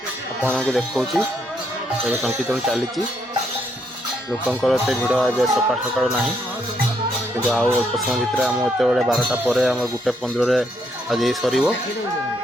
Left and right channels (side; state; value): both; normal; correlation 0.75